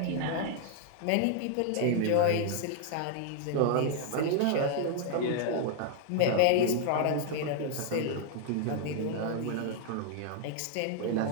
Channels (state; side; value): different; both; correlation 0.00